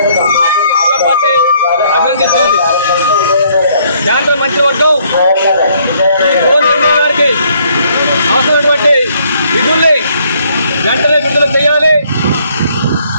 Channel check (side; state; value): both; inverted; correlation -0.66